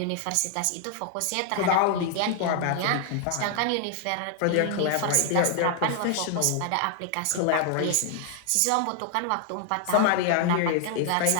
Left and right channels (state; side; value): different; both; correlation 0.00